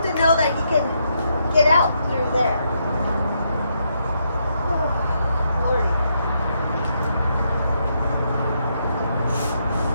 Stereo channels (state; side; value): inverted; both; correlation -0.78